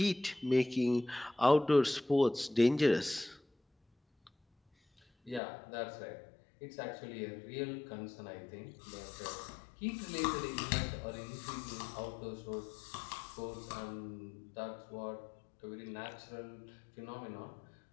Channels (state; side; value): drops out; right; at 5.4 s